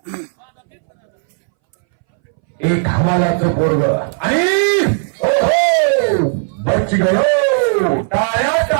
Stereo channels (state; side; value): silent; left; 65 dB below the other